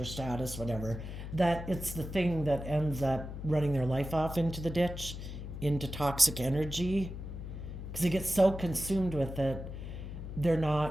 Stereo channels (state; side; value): noise; left; hum, 8 dB below the sound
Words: status, whatever, that it's the thing that ends up running their life off into the ditch, into toxic energy, because they get so consumed with it, they're